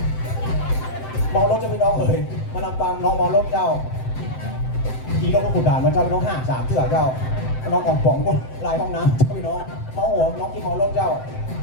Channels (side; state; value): right; late; 7.7 ms